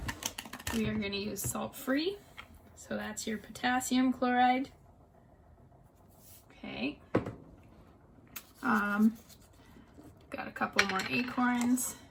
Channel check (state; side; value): identical; both; correlation 1.00